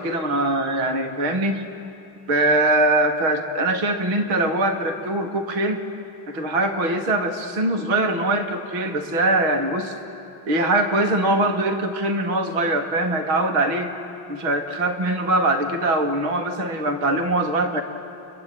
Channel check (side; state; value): left; late; 6.2 ms